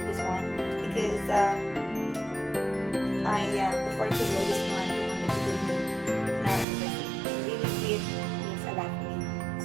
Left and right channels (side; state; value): left; drops out; at 6.7 s